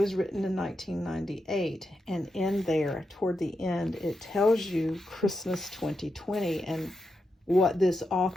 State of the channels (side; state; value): both; normal; correlation 0.86